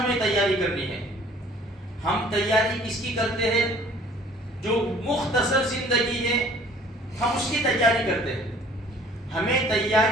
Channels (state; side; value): normal; both; correlation 0.54